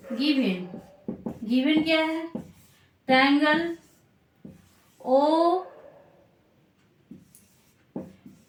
गिवन क्या है, triangle O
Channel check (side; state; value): both; identical; correlation 1.00